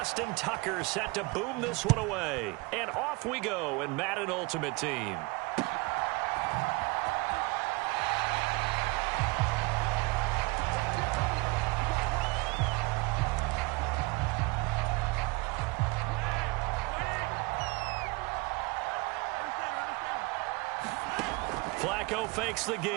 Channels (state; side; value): quieter; left; 25.9 dB